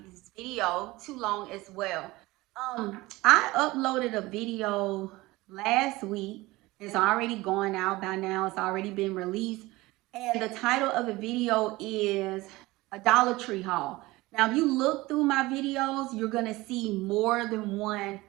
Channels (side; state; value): left; quieter; 20.2 dB